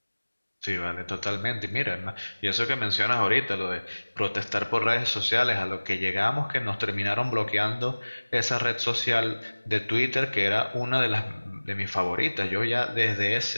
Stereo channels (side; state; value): both; inverted; correlation -1.00